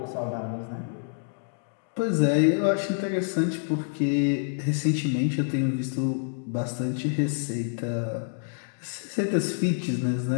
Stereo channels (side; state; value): right; silent; digital silence